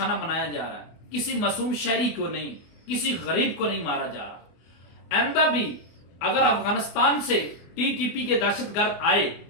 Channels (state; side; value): late; right; 24 ms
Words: بنایا جا رہا ہے، کسی معصوم شہری کو نہیں، کسی غریب کو نہیں مارا جا رہا۔ آئندہ بھی اگر افغانستان سے ٹی ٹی پی کے دہشت گرد آئے